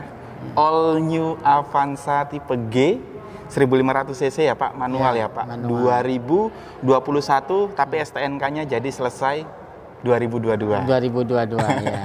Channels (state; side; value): identical; both; correlation 1.00